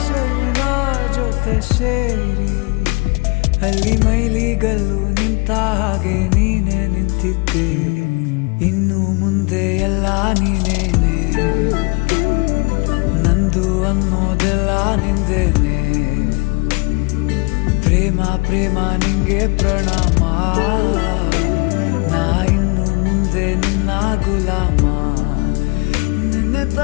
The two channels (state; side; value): quieter; right; 29.6 dB